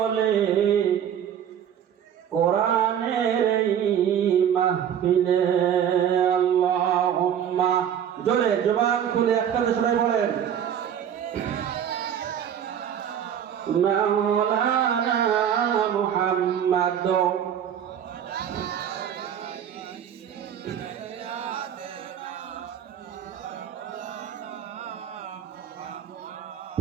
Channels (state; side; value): quieter; left; 9.2 dB